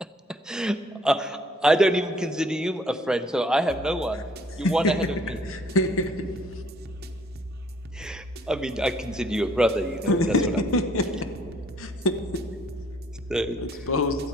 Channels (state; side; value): normal; both; correlation 0.61